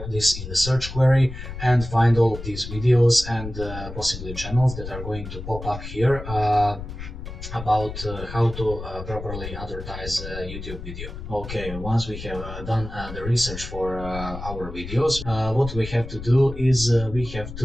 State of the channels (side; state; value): left; noise; rumble, 10 dB below the sound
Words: this in the search query and find all of these videos and possibly channels that are going to pop up here about how to properly advertise a YouTube video. Okay, once we have done the research for our videos, what we have to do is we have